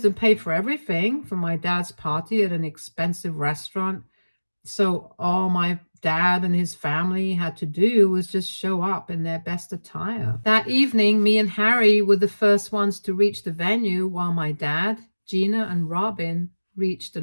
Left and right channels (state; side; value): inverted; both; correlation -1.00